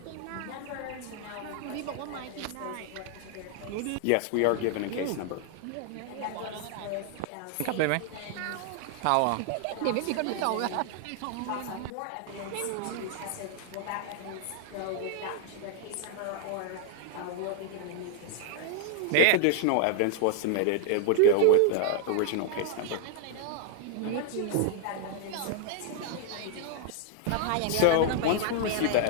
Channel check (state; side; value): different; both; correlation 0.00